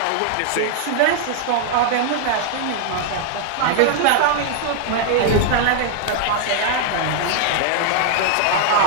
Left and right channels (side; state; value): both; different; correlation 0.00